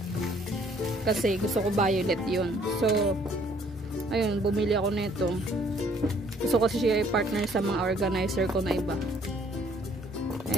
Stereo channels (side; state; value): both; normal; correlation 0.62